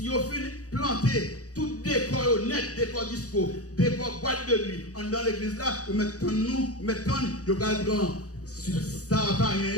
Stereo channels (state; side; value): late; right; 0.67 ms